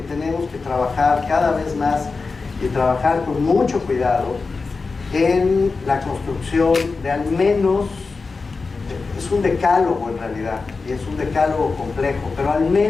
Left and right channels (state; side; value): quieter; right; 4.3 dB